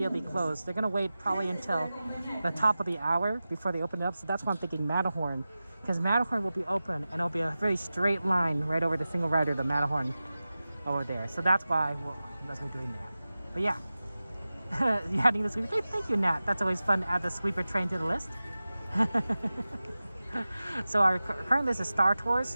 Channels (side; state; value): both; inverted; correlation -0.95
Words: close. They're gonna wait probably until the top of the hour before they open it up, so that's why I'm thinking Matterhorn, because Matterhorn will be open and it'll be a very straight line right over the single rider, the Matterhorn over there. So that's why that's what we're doing that. But yeah, you're adding the sweeper train. Thank you, Nat. That's always fun to add the sweeper train to the list. So our current list is Star Tours,